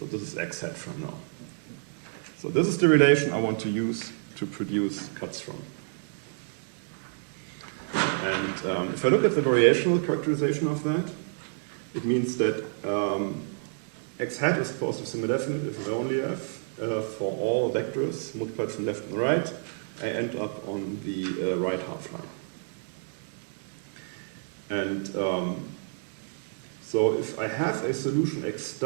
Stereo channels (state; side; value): silent; left; digital silence